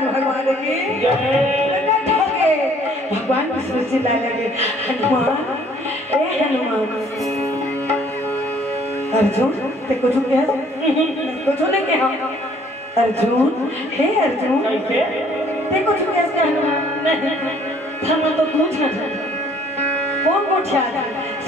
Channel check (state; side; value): normal; both; correlation 0.59